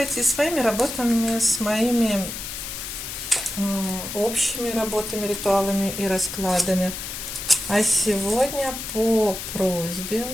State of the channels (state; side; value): noise; left; hiss, 7 dB below the sound